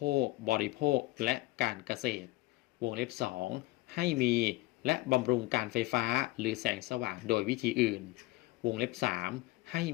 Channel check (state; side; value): quieter; right; 19.7 dB